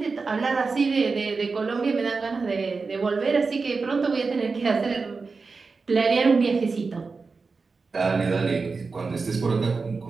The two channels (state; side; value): quieter; left; 4.4 dB